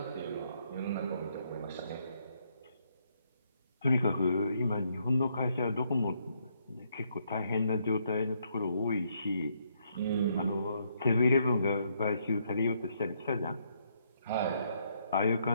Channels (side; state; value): both; inverted; correlation -0.73